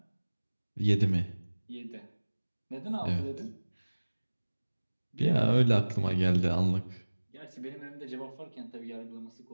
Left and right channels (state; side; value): inverted; both; correlation -1.00